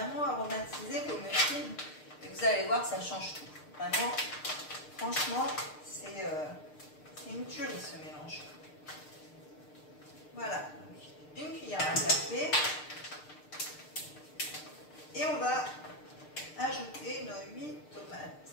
aromatiser vos muffins. Et vous allez voir, ça change tout. Vraiment, franchement, c'est une tuerie ce mélange. Voilà, donc, une cuillère à café. Et on va ajouter nos 8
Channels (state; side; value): late; right; 6.6 ms